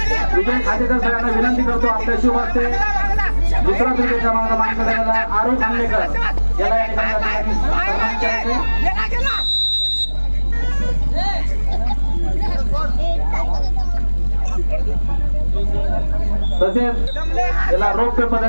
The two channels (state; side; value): inverted; both; correlation -1.00